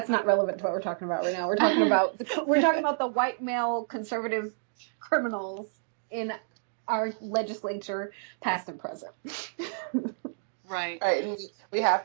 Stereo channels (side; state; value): left; silent; digital silence